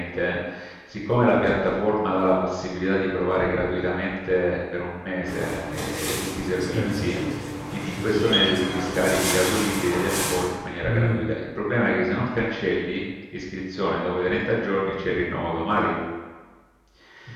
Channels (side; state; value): both; identical; correlation 1.00